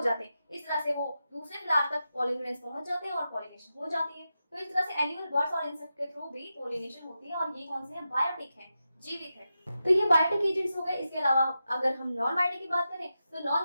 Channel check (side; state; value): both; inverted; correlation -0.90